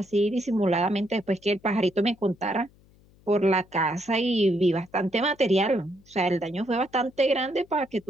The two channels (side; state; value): left; noise; hum, 29 dB below the sound